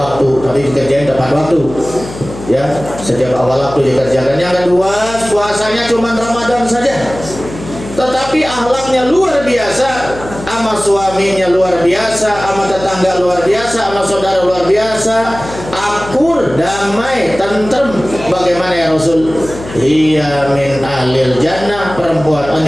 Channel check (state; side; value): noise; left; hum, 13 dB below the sound